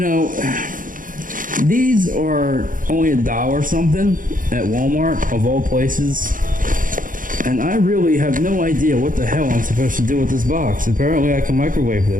these are only $1 something at Walmart, of all places. And I really have no idea what the hell I'm supposed to do with this box. Apparently I can microwave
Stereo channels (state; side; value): late; left; 0.39 ms